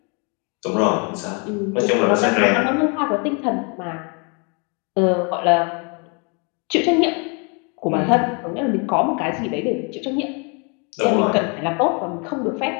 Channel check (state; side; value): quieter; right; 34.4 dB